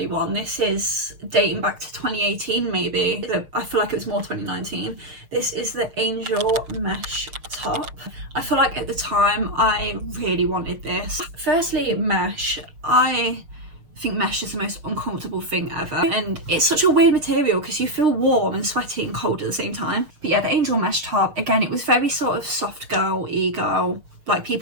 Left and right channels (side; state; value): left; late; 6.6 ms